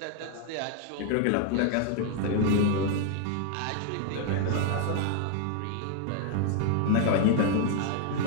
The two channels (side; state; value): both; different; correlation 0.00